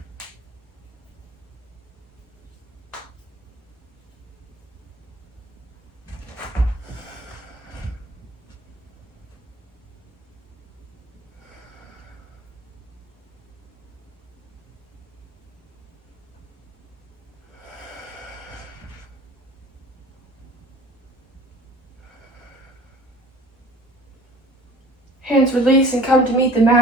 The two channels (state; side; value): normal; both; correlation 0.46